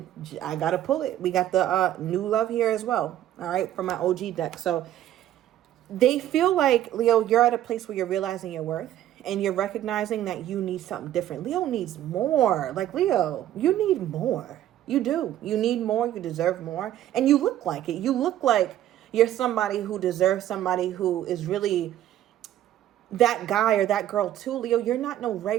I got to pull it. We got the new love here as well. All right, from my OG deck. So they feel like, Leo, you're at a place where you're realizing your worth. And you're recognizing that you need something different. Leo needs more. Like, Leo, you need more. You do. You need more. You deserve more. And you look like it. You look like you're somebody who deserves somebody who is really that guy or that girl too, Leo. You're not no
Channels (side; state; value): left; quieter; 12.4 dB